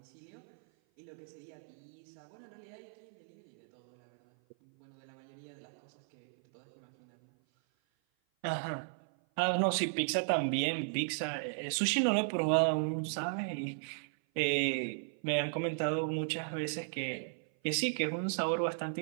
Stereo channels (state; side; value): silent; left; 54 dB below the other